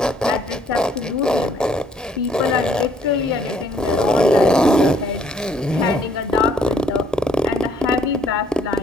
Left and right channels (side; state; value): both; normal; correlation 0.65